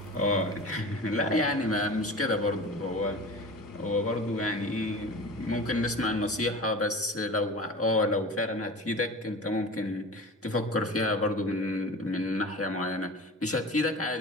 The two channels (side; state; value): both; normal; correlation 0.35